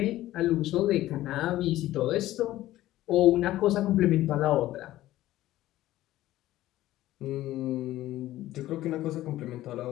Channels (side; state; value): right; quieter; 15.1 dB